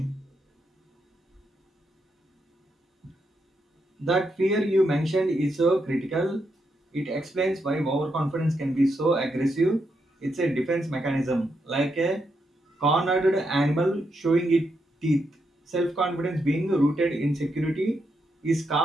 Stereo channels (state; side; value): normal; both; correlation 0.81